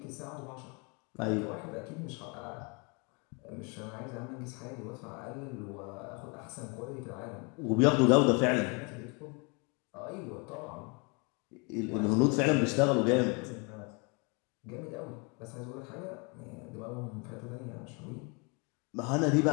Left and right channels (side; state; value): right; quieter; 32.1 dB